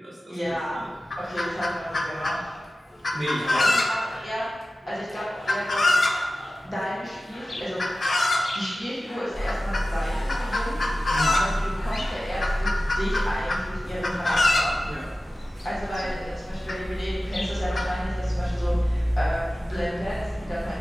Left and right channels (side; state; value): both; normal; correlation 0.95